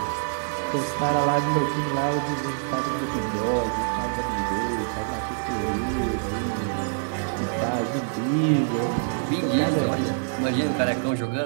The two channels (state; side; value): silent; left; digital silence